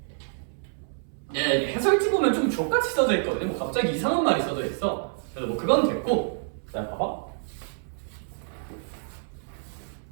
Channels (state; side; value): silent; left; 60 dB below the other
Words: 예, 해설지 보면 좀 족같이 써져 있거든요. 뭐 갑자기 이상한 말이 써져 있어. 그래서 뭐 그건 됐고, 자 봐봐.